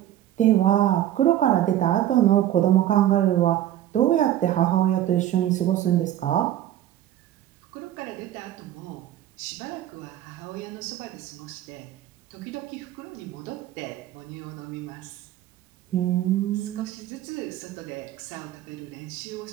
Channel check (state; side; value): quieter; left; 12.6 dB